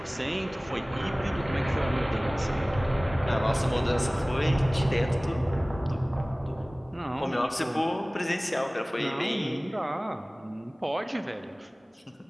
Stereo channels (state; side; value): normal; both; correlation 0.98